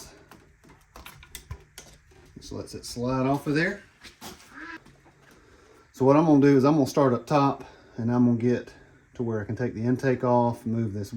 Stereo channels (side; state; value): both; identical; correlation 1.00